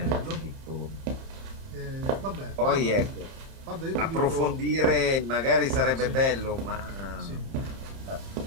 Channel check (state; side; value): late; left; 30 ms